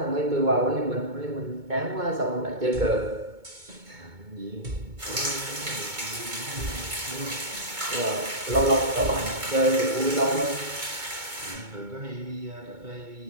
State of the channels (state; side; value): late; left; 2.2 ms